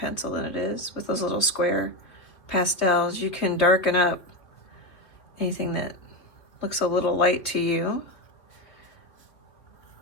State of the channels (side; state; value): right; late; 3.1 ms